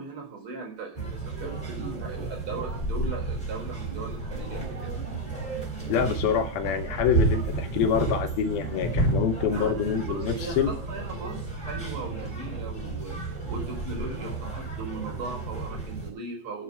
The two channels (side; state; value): both; normal; correlation 0.02